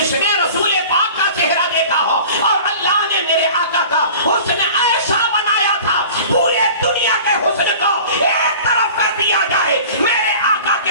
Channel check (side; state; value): both; inverted; correlation -0.42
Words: نے رسول پاک کا چہرہ دیکھا ہو، اور اللہ نے میرے آقا کا حسن ایسا بنایا تھا، پورے دنیا کے حسن کو ایک طرف کر دیا جائے، میرے آقا کے